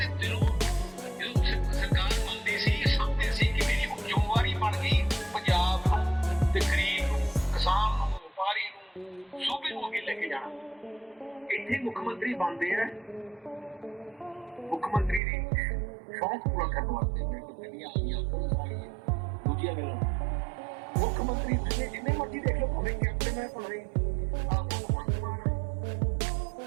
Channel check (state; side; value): drops out; left; at 15.2 s